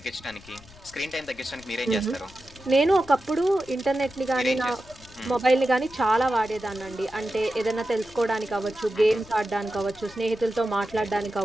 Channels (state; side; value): noise; left; rumble, 22 dB below the sound